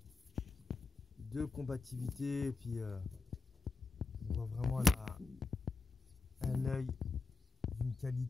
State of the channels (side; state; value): right; quieter; 4.2 dB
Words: combativité. Et puis, on voit vraiment un œil d'une